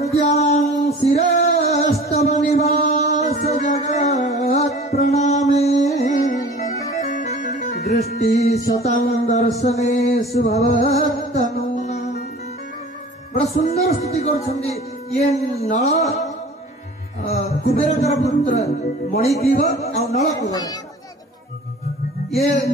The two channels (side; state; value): both; normal; correlation 0.43